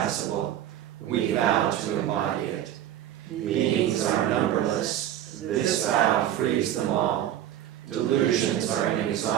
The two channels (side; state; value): left; quieter; 11.6 dB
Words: We vow to embody it. Beings are numberless. This vow frees them all. Delusions are